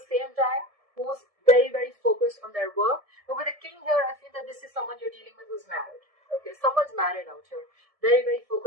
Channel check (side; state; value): left; late; 1.7 ms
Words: same time who's very, very focused on their work. But with the king here, I feel that this is someone you're dealing with who's married. Okay, someone's married out here, very, very